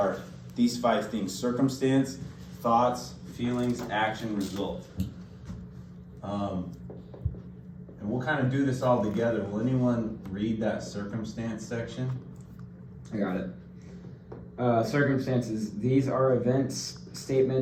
these 5 things: circumstance, thoughts, feelings, action, result. And we'll kind of do this all together. Will anyone read that circumstance section? I got it. Circumstances. These are events,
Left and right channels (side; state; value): both; identical; correlation 1.00